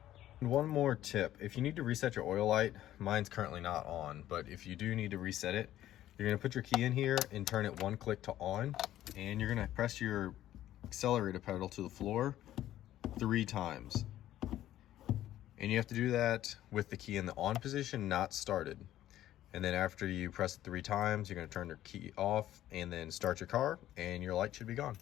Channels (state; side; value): quieter; right; 13.1 dB